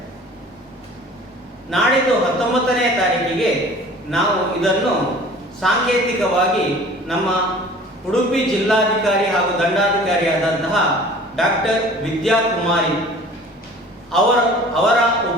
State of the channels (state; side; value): normal; both; correlation 0.46